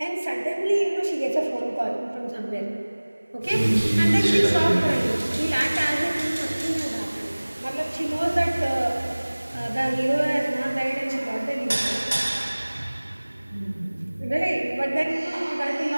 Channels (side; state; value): both; inverted; correlation -1.00